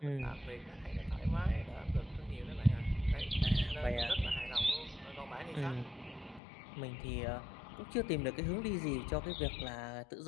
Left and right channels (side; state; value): right; drops out; at 6.4 s